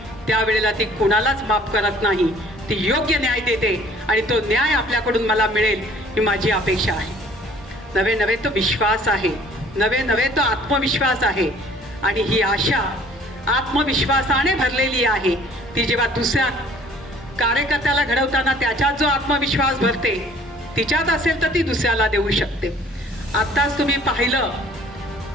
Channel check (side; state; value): both; normal; correlation 0.53